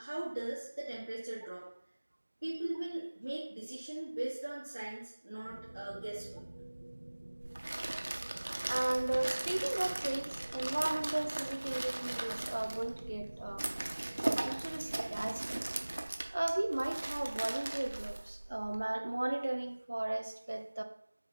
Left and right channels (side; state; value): both; inverted; correlation -1.00